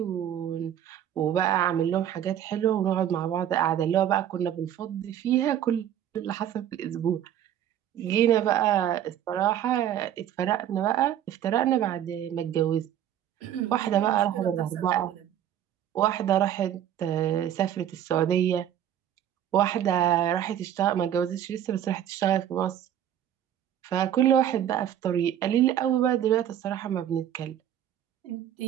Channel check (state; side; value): quieter; left; 10.7 dB